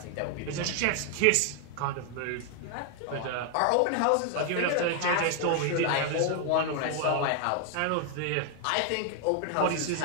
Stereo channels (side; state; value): both; different; correlation 0.00